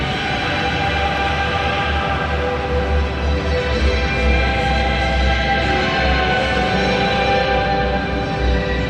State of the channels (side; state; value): both; identical; correlation 1.00